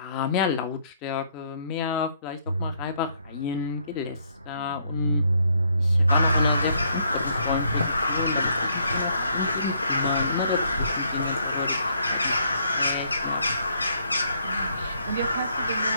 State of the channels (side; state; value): both; inverted; correlation -0.69